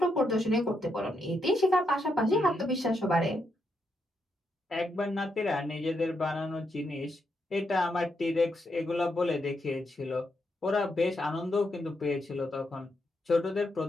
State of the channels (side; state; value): both; normal; correlation 0.81